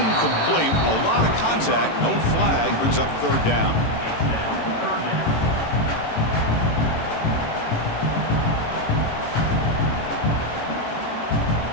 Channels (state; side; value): late; right; 18 ms